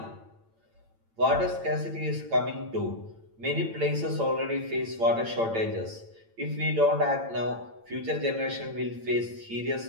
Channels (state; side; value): late; left; 8.9 ms